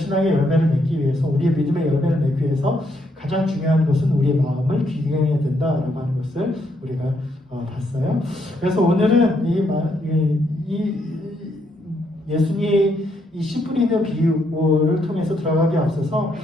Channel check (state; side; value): normal; both; correlation 0.75